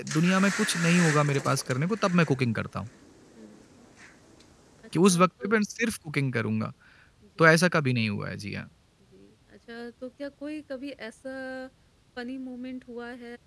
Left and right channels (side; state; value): both; identical; correlation 1.00